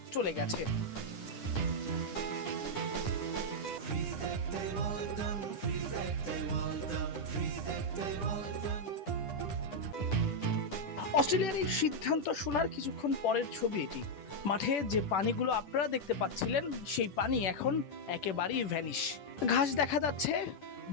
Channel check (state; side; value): late; right; 10 ms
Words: চলে গেছে। অস্ট্রেলিয়ার এই সিদ্ধান্ত শোনার কিছুক্ষণ পরের ছবি এটি। মাঠে যে পানিগুলো আপনারা দেখতে পাচ্ছিলেন সেই পানি এখন একেবারেই ভ্যানিশ। ঘাস দেখা যাচ্ছে,